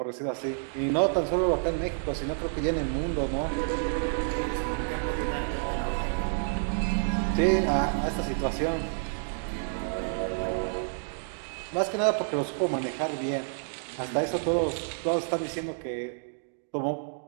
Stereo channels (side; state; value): left; silent; digital silence